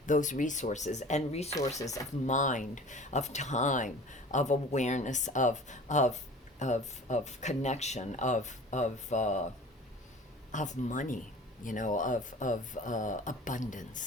those resources, and resources of mind, of time, of awareness, of connection, of money, you know, of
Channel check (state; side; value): normal; both; correlation 0.42